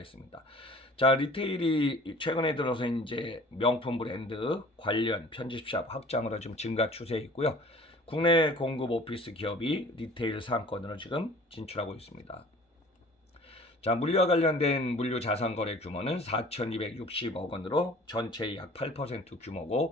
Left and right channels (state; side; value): normal; both; correlation 0.48